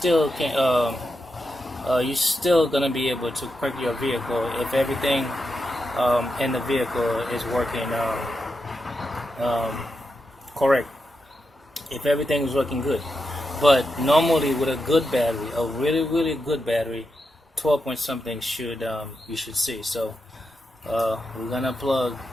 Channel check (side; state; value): both; normal; correlation 0.87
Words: can you're still gonna be able to crank your vehicle if everything in the vehicle is working correct, if everything is working good. But normally with a good battery, a really good battery, 12 point something should you should see. So we're gonna plug